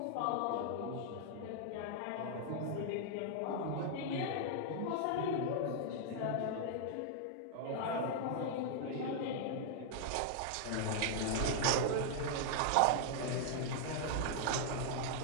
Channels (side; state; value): both; different; correlation -0.01